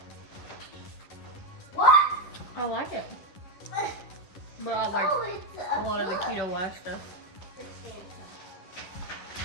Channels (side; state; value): right; late; 11 ms